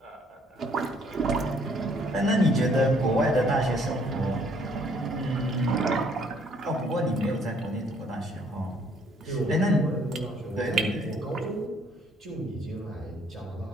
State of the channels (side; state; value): both; normal; correlation 0.64